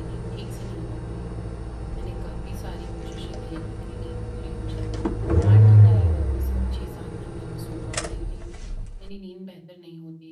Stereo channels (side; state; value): both; identical; correlation 1.00